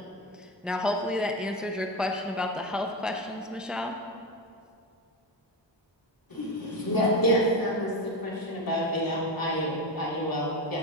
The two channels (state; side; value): normal; both; correlation 0.16